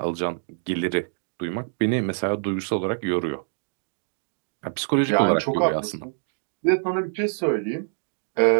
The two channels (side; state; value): left; silent; digital silence